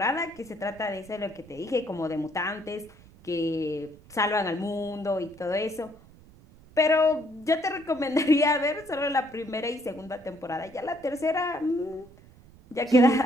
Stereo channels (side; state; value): right; noise; rumble, 24 dB below the sound